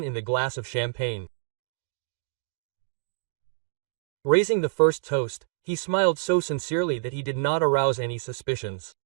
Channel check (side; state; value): left; silent; digital silence